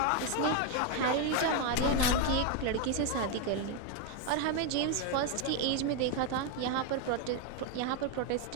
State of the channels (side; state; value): both; different; correlation 0.01